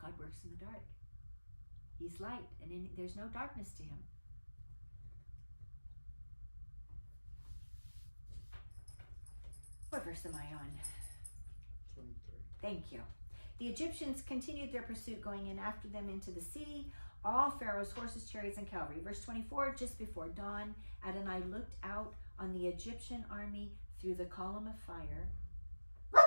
works in the dark. He's light, and there's no darkness to him. What verse am I on? 23. Thank you. The Egyptians continued their pursuit, going in after them into the sea, all Pharaoh's horses, chariots, and cavalry. Verse 24, just before dawn, Adonai looked out on the Egyptian army through the column of fire.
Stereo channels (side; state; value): both; inverted; correlation -1.00